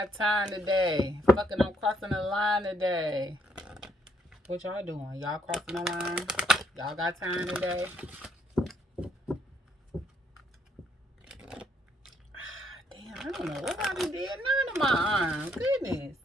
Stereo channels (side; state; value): both; normal; correlation 0.70